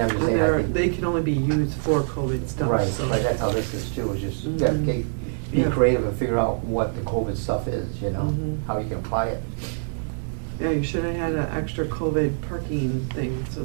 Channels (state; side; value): silent; left; digital silence